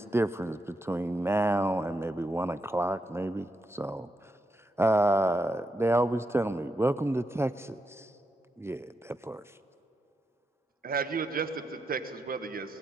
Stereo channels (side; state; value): both; normal; correlation 0.84